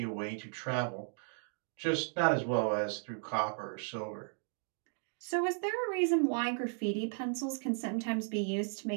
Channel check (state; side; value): silent; left; 54 dB below the other